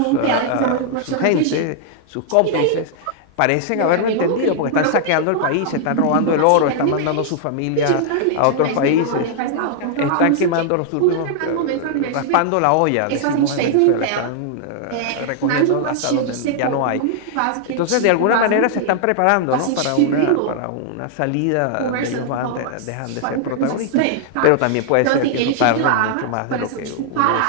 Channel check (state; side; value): different; both; correlation -0.01